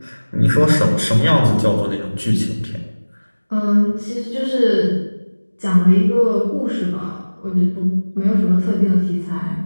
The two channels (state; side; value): inverted; both; correlation -1.00